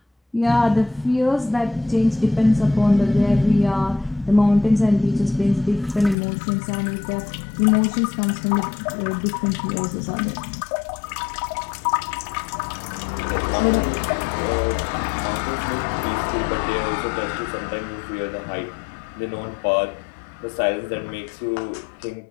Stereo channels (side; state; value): right; drops out; at 6.2 s